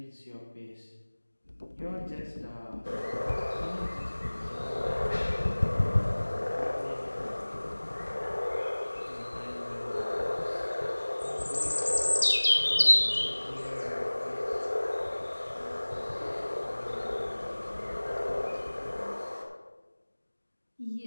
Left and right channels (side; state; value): both; inverted; correlation -1.00